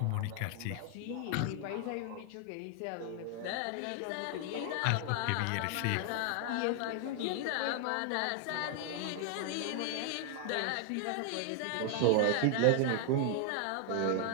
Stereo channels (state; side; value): different; both; correlation 0.00